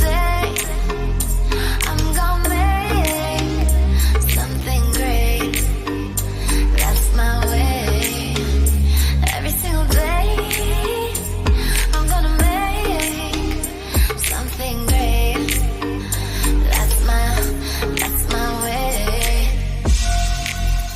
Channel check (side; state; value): both; identical; correlation 1.00